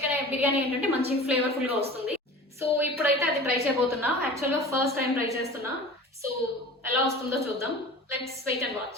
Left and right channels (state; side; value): normal; both; correlation 0.39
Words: బిర్యానీ ఏంటంటే మంచి ఫ్లేవర్ఫుల్ గా వస్తుంది. సో ఇప్పుడైతే అది ట్రై చేయబోతున్నా. యాక్చువల్గా ఫస్ట్ టైం ట్రై చేస్తున్నా. సో ఎలా వస్తుందో చూద్దాం. Let's wait and